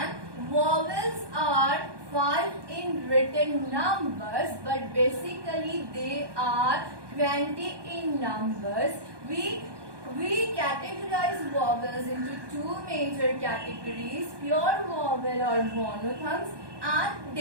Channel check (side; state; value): left; late; 1.2 ms